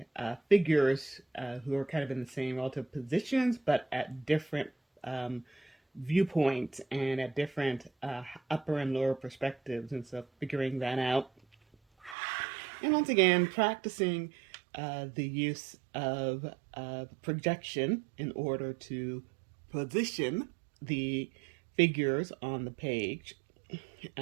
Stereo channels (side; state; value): left; drops out; at 12.2 s